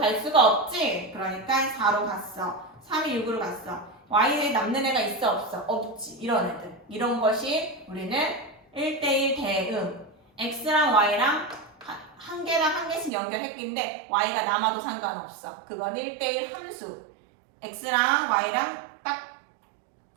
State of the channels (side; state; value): left; drops out; at 13.1 s